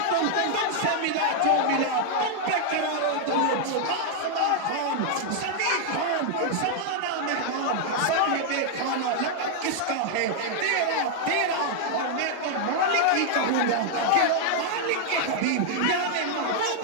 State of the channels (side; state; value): both; different; correlation 0.00